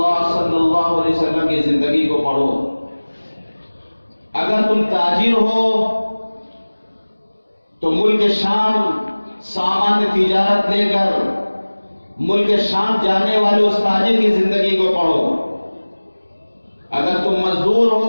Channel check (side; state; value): both; inverted; correlation -1.00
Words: صلی اللہ علیہ وسلم کی زندگی کو پڑھو. اگر تم تاجر ہو تو ملک شام سامان تجارت لے کر ملک شام جانے والے اس تاجر کی زندگی کو پڑھو. اگر تم مزدور